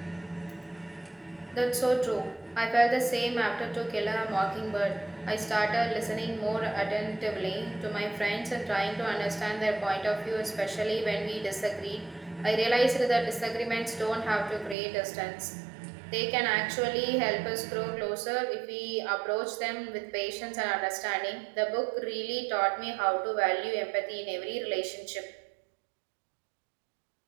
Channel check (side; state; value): left; drops out; at 14.8 s